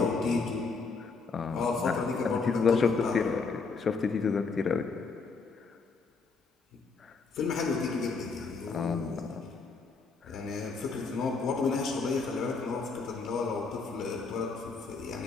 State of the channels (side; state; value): right; quieter; 4.5 dB